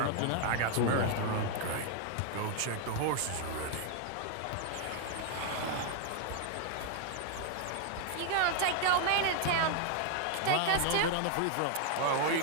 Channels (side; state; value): both; different; correlation 0.00